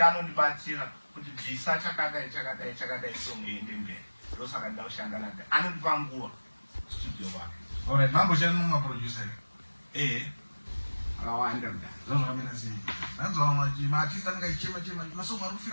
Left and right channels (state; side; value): inverted; both; correlation -1.00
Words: anondibatsira kuti bvisa chakadai song iyi ndemberi. Ndosaka ndaushanda naye. Anondipa nguva studio wake. Alright, mamboshanda mumaproducer. Akawanda mudhara. Zvakamira sei? Nanzwa maartist anenge achichema masomo ari